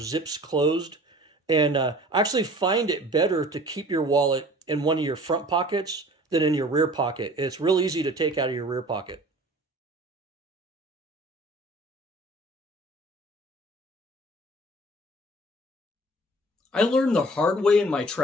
closed. And I actually find it better to keep your wallet in one of your front pockets than in your rear pocket. It's real easy to take out of your rear pocket. I learned the hard way in my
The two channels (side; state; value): both; normal; correlation 0.46